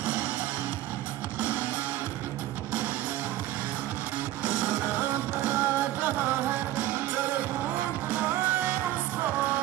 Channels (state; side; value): quieter; left; 14.5 dB